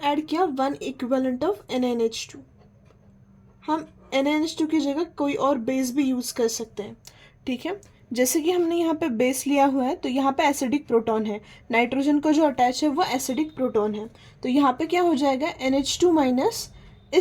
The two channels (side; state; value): both; identical; correlation 1.00